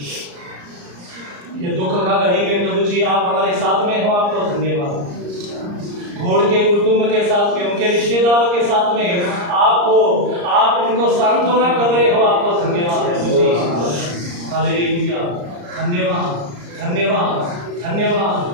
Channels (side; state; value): left; late; 34 ms